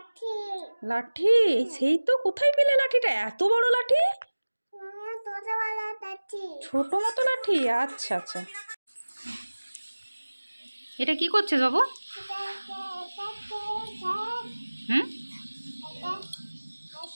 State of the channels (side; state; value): both; inverted; correlation -1.00